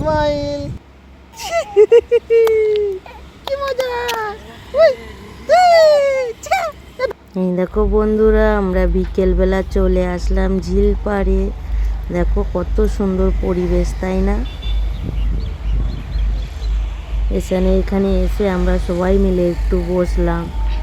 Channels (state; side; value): identical; both; correlation 1.00